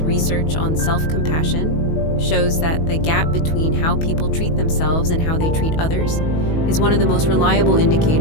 research on self-compassion shows that the gap between how people treat themselves and how they treat others is one of the most reliable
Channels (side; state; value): right; late; 19 ms